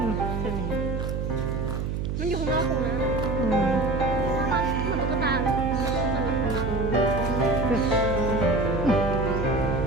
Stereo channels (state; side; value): noise; right; hum, 2 dB below the sound